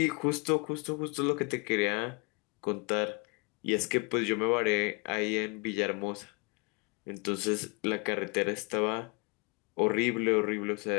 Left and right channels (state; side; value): quieter; right; 31.5 dB